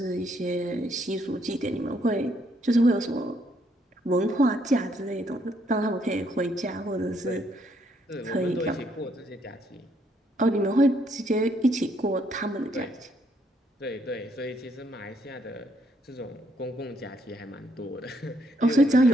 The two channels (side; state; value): both; normal; correlation 0.72